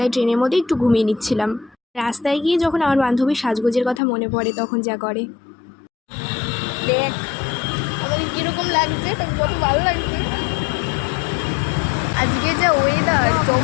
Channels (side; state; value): right; drops out; at 4.0 s